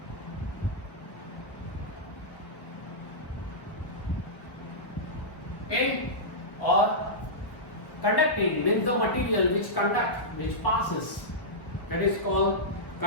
Okay, or conducting means the material which conducts, which passes, that is called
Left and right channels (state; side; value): late; right; 1.1 ms